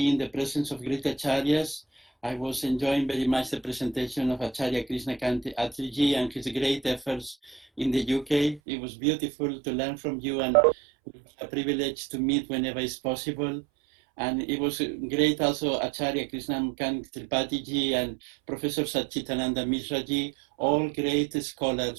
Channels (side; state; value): left; drops out; at 8.6 s